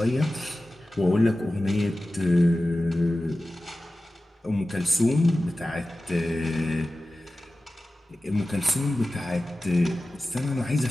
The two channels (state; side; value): normal; both; correlation 0.95